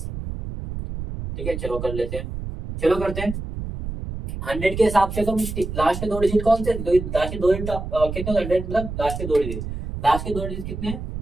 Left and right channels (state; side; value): noise; right; rumble, 7 dB below the sound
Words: ठीक है चलो कर लेते हैं, चलो करते हैं 100 के हिसाब से। तो लास्ट के 2 डिजिट कौन से, लास्ट के 2 डिजिट कितने, 100 मतलब लास्ट के 2 डिजिट, लास्ट के 2 डिजिट कितने हैं